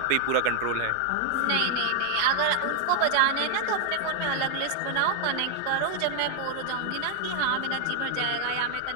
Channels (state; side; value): different; both; correlation 0.00